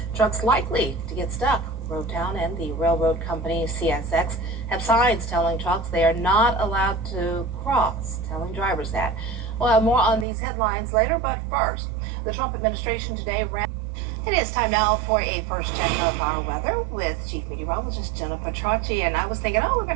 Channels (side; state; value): left; drops out; at 10.2 s